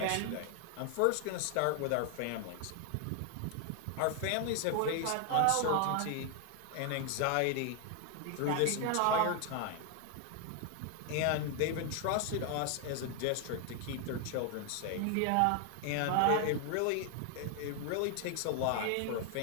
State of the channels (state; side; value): different; both; correlation 0.00